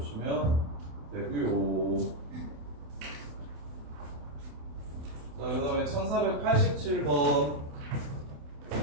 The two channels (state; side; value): late; left; 28 ms